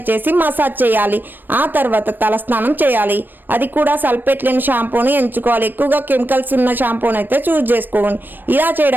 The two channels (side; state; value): left; late; 0.092 ms